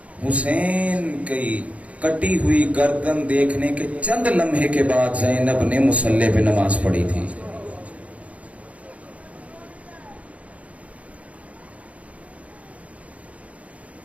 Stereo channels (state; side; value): late; left; 0.066 ms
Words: حسین کی کٹی ہوئی گردن دیکھنے کے چند لمحے کے بعد زینب نے مصلی پہ نماز پڑھی تھی۔